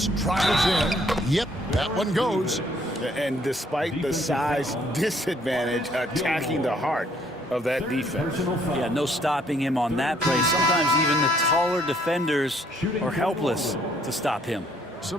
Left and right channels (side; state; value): both; normal; correlation 0.65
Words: tries in. Yep, that one goes. And despite the size disadvantage, attacking the heart of that defense. Yeah, no stopping him on that play. Sometimes even the taller defenders are helpless to stop him. So